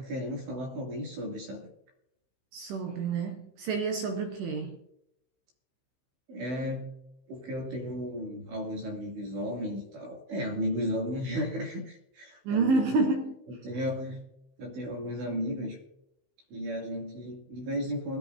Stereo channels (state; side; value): late; left; 15 ms